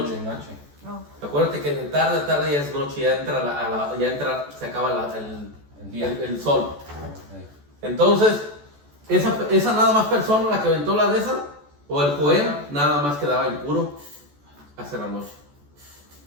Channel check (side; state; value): left; late; 14 ms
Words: de noche. No. Acuérdate que de tarde a tarde ya es noche, ya entra, se acaba El día. el sol. Sí. Entonces, esa nada más persona, la que aventó la de esa, o el Joel, nada más quedaba impuro hasta la noche.